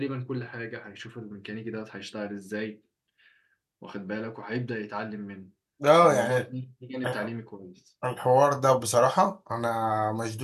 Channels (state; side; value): identical; both; correlation 1.00